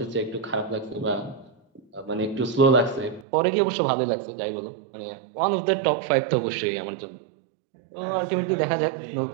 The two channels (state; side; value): drops out; left; at 3.2 s